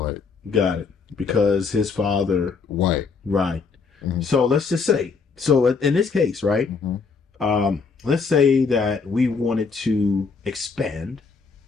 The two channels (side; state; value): right; quieter; 5.0 dB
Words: Got it. Because his father, White. right. Mhm. So let's just say, in this case, right? Let's say that we wanted to expand